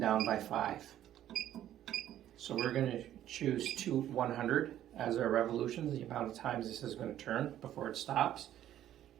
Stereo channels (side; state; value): left; quieter; 11.9 dB